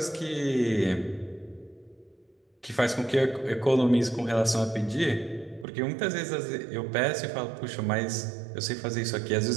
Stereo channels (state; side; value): drops out; left; at 5.7 s